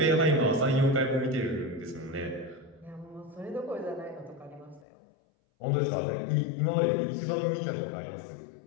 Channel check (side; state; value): right; drops out; at 4.9 s